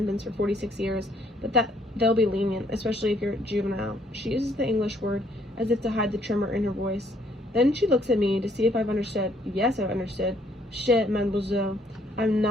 for 46 years, but that they'll be lenient, especially if you're juvenile. She uses the English word as if to hide the tremor in her voice. Then she looks at me to see if I've understood. Yes, I've understood. Shit, mademoiselle. I'm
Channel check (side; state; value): both; normal; correlation 0.66